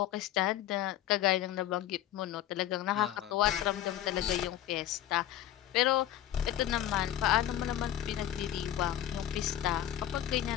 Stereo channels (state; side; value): quieter; right; 12.3 dB